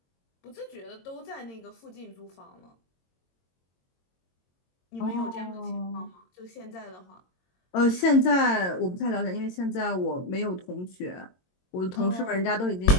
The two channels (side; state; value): right; late; 22 ms